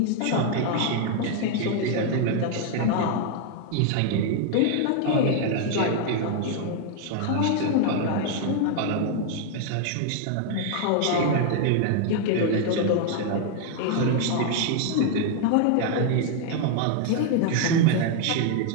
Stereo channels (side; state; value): both; different; correlation 0.00